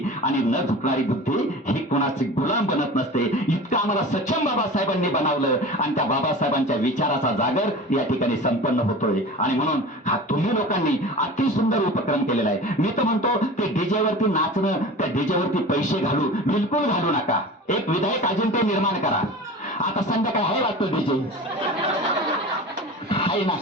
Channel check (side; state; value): both; normal; correlation 0.35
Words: आणि न झुकणारी बुद्धी ही कोणाची गुलाम बनत नसते. इतकं आम्हाला सक्षम बाबासाहेबांनी बनवलं आणि त्या बाबासाहेबांच्या विचाराचा जागर या ठिकाणी संपन्न होतोय. आणि म्हणून हा तुम्ही लोकांनी अति सुंदर उपक्रम केलेला आहे. मी तर म्हणतो ते डीजेवरती नाचणं, त्या डीजेवरती पैसे बिलकुल घालू नका. एक विधायक अजिंक्य निर्माण करा. आता संध्याकाळी आहे वाटतं डीजे आहे ना,